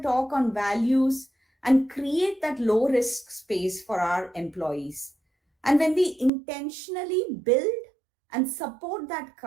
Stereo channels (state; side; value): drops out; left; at 6.3 s